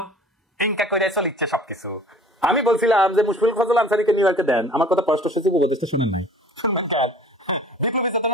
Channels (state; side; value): normal; both; correlation 0.49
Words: এনকা করে চলিচ্ছে সবকিছু। আমি বলছিলাম যে মুশফিকুল ফজল আনসারীকে নিউ ইয়র্কে দেন, আমার কথা পররাষ্ট্র সচিব উপদেষ্টা শুনেন নাই।